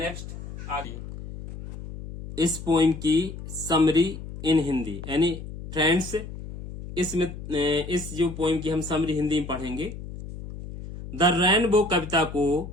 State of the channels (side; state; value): left; noise; hum, 11 dB below the sound